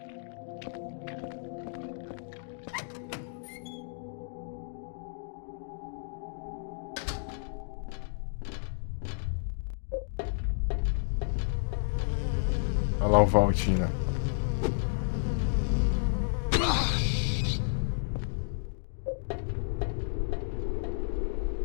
Olha lá o Valtina.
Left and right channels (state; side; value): silent; right; digital silence